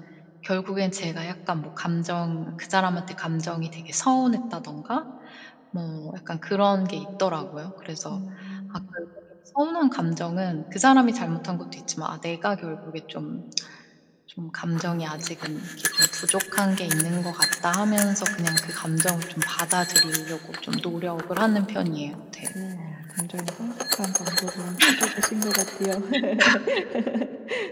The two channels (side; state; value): both; identical; correlation 1.00